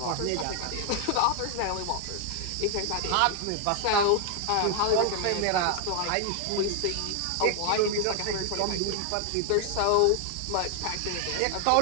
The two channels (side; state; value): both; different; correlation 0.00